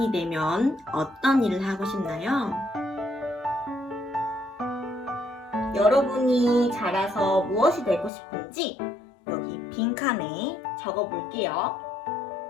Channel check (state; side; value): drops out; right; at 8.1 s